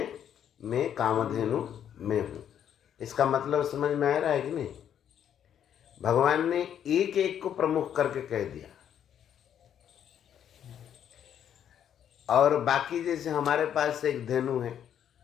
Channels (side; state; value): right; quieter; 9.4 dB